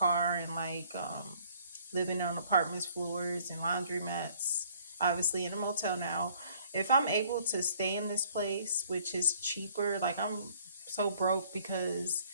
and like living on apartments floors and laundromats. Obviously in a motel now. If I'm able to stay in this place, which is cheaper, like I'm so broke because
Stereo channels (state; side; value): inverted; both; correlation -0.59